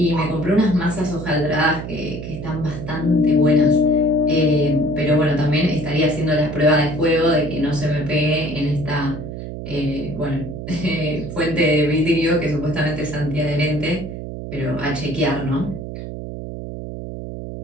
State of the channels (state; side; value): noise; right; hum, 8 dB below the sound